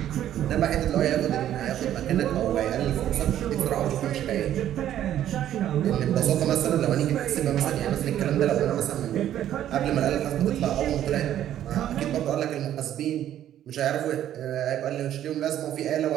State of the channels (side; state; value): left; quieter; 11.5 dB